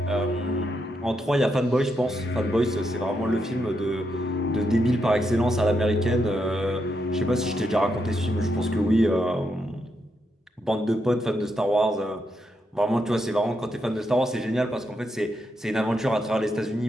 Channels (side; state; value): both; normal; correlation 0.82